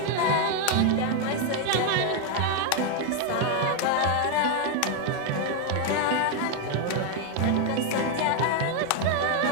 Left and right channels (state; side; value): different; both; correlation 0.01